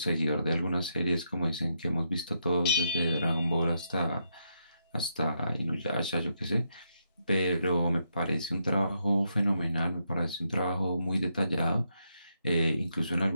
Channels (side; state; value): both; inverted; correlation -0.80